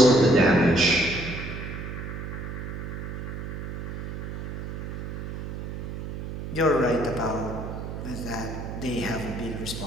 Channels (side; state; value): right; noise; hum, 6 dB below the sound